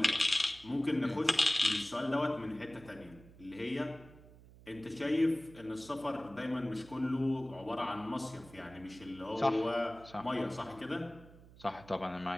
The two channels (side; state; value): right; noise; hum, 21 dB below the sound